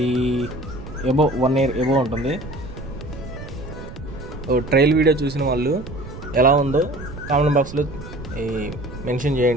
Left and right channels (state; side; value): noise; right; rumble, 12 dB below the sound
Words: 1 year ఎబో ఉంటుంది. ట్రైల్ వీడియో చూసిన వాళ్ళు ఎలా ఉందో కామెంట్ బాక్స్లో మెన్షన్